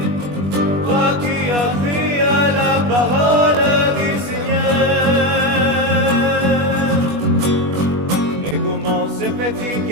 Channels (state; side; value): late; left; 21 ms